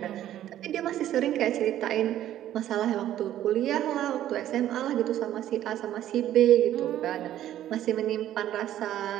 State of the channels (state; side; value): quieter; left; 12.3 dB